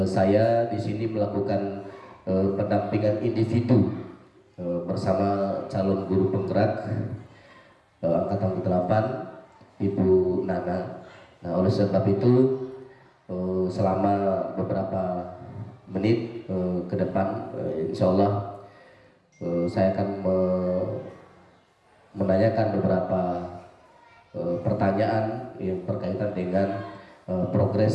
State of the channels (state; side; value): identical; both; correlation 1.00